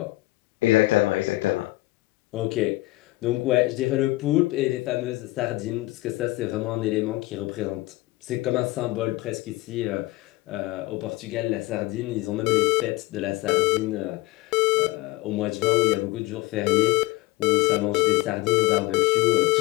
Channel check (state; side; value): quieter; right; 19.8 dB